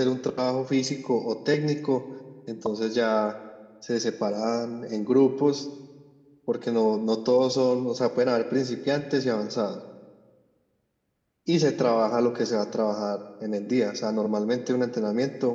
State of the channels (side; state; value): both; identical; correlation 1.00